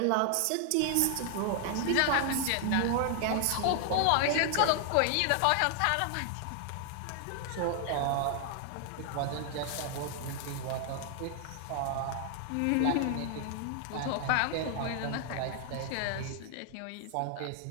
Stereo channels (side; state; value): both; different; correlation 0.00